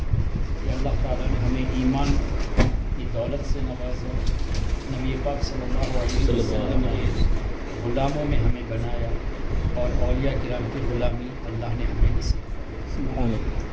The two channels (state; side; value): identical; both; correlation 1.00